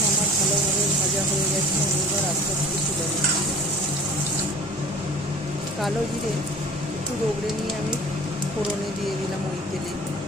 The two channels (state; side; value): noise; right; hum, 21 dB below the sound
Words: আমার ভালোভাবে ভাজা হয়ে গেছে। আমি এবার আস্তে আস্তে তুলে নিচ্ছি। কালো জিরে একটু রগড়ে নিয়ে আমি ফোড়নে দিয়ে দিলাম ওই তেলে।